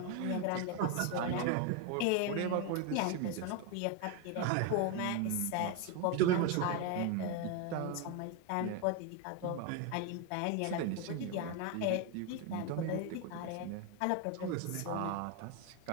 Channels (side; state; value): both; different; correlation 0.02